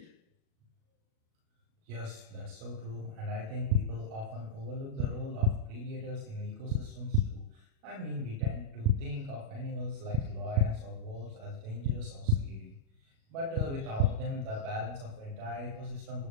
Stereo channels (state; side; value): late; left; 37 ms